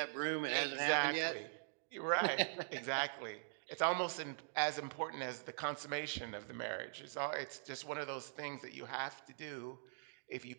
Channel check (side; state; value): left; silent; digital silence